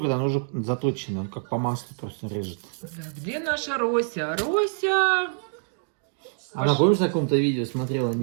он уже заточенный, он как по маслу просто режет. Где наша Рося? Рося! Она, помнишь, на каком-то видео смотрела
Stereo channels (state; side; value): silent; left; digital silence